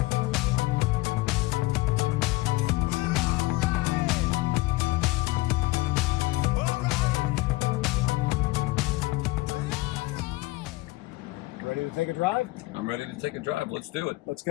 Ready to take a drive? I'm ready to take a drive. Let's do it. Let's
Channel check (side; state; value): right; quieter; 20.8 dB